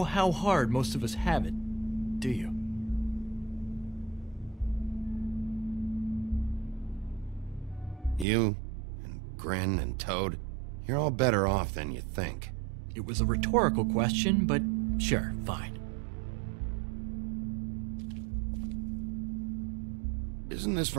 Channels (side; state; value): left; drops out; at 8.2 s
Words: how hard most of us have it, do you? You, and Grin, and Toad, you're all better off than you think. It was a rhetorical question, but sure, fine. Isn't this